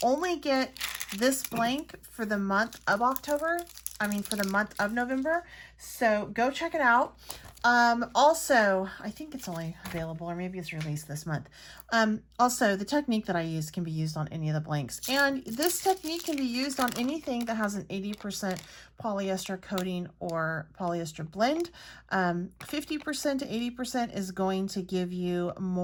only get this blank for the month of October. I mean, for the month of November. So go check it out. Also, I think it's only available, or maybe it's released this month. Also, the technique that I use can be used on any of the blanks. And this technique can be used on anything that has an 80% polyester coating or polyester blend. 50% to 80% is going to give you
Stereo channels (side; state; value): both; identical; correlation 1.00